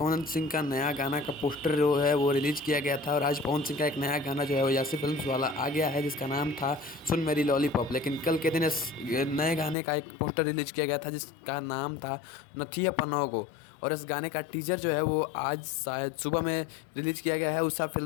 सिंह का नया गाना का पोस्टर जो है वो रिलीज किया गया था और आज पवन सिंह का एक नया गाना जो है वो यासी फिल्म्स वाला आ गया है जिसका नाम था सुन मेरी लॉलीपॉप। लेकिन कल के दिन इस नए गाने का एक पोस्टर रिलीज किया गया था जिसका नाम था नथिया पनोगो। और इस गाने का टीजर जो है वो आज शायद सुबह में रिलीज किया गया है उषा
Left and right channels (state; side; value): drops out; right; at 9.8 s